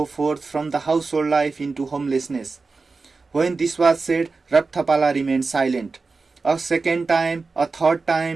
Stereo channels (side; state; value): left; quieter; 4.1 dB